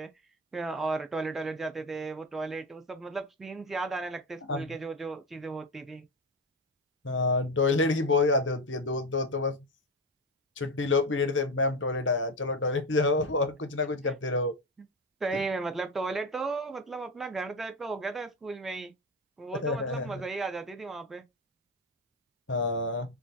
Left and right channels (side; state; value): both; normal; correlation 0.16